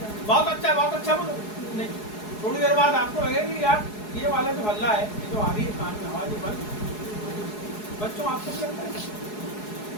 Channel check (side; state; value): right; late; 4.7 ms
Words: बहुत अच्छा बोलो। नहीं, थोड़ी देर बाद आपको लगेगा कि यार ये वाला जो हल्ला है, ये जो आ रही है कान में आवाज, बंद। बच्चों आपको क्या लगता है?